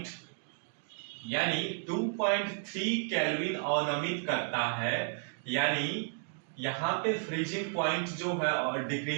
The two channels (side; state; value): left; silent; 56 dB below the other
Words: यानी 2.3 केल्विन अवनमित करता है, यानी यहां पे फ्रीजिंग पॉइंट जो है और